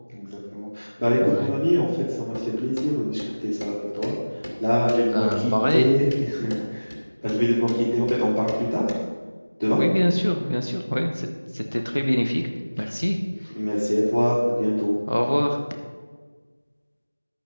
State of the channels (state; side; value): inverted; both; correlation -1.00